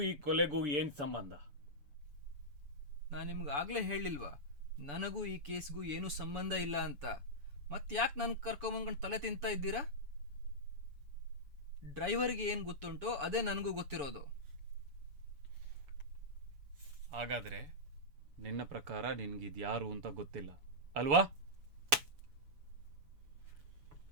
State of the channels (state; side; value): late; left; 7.0 ms